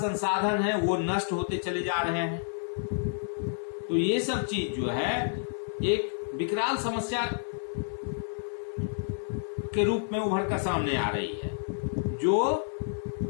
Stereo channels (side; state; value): right; silent; digital silence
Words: है वो नष्ट होते चले जा रहे हैं। तो ये सब चीज जो है एक विकराल समस्या के रूप में उभर कर सामने आ रही है, जो